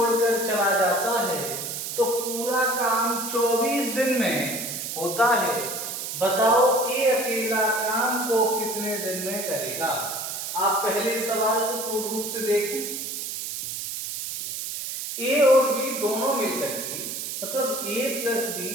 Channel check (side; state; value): right; noise; hiss, 5 dB below the sound